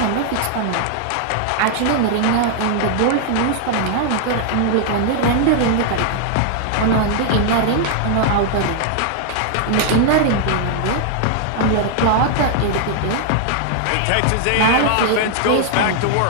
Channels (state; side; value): different; both; correlation 0.00